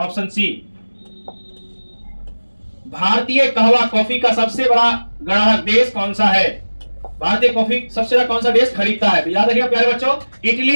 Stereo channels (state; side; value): inverted; both; correlation -1.00